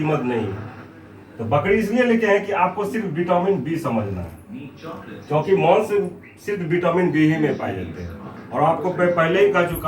नहीं है। तो बकरी इसलिए लेके हैं कि आपको सिर्फ विटामिन बी समझना है, क्योंकि मांस सिर्फ विटामिन बी ही में पाए जाते हैं। और आपको मैं पहले ही कह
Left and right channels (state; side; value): identical; both; correlation 1.00